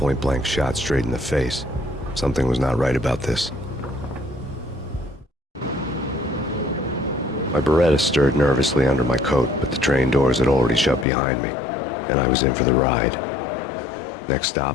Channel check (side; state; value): right; drops out; at 11.1 s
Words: shot straight in the face. Something was not right about this. My Beretta stirred nervously under my coat, but the train doors had already shut behind me, and I was in for the ride. Next